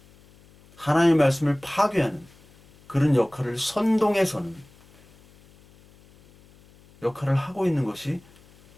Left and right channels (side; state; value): left; noise; hum, 28 dB below the sound